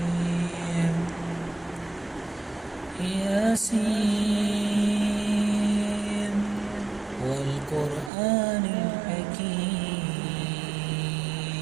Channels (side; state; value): left; drops out; at 8.1 s